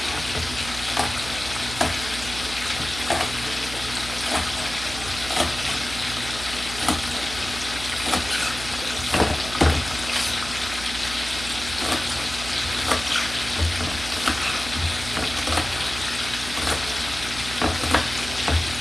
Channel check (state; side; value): noise; right; hum, 10 dB below the sound